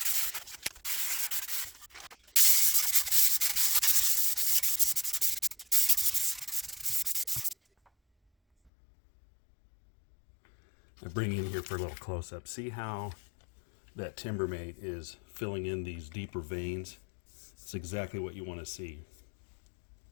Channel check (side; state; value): right; drops out; at 8.7 s